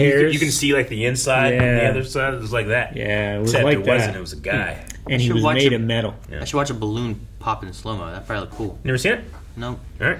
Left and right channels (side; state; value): both; identical; correlation 1.00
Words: You can see like the inside and the other side. It was like that. Yeah, it was Except like it that. wasn't. It was a guy. And he was made of metal. Yeah. I should watch a balloon pop in slow-mo. That'd probably look cool. Never seen it? No. All